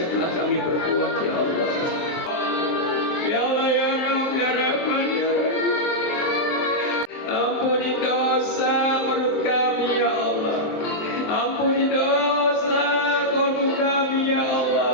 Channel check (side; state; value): right; late; 23 ms